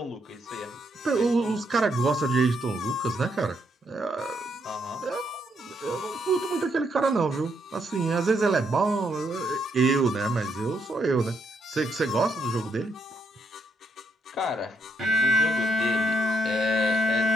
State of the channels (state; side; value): normal; both; correlation 0.75